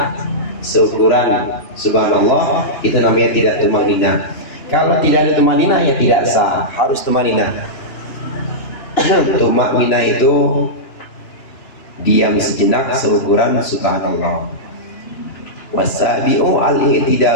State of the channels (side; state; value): right; late; 2.9 ms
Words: seukuran subhanallah. Itu namanya tidak tumaninah. Kalau tidak ada tumaninah ya tidak sah, harus tumaninah. Tumaninah itu diam sejenak seukuran subhanallah. Wasabi'u